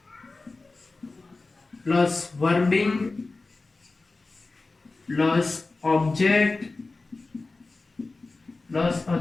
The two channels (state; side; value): quieter; right; 3.5 dB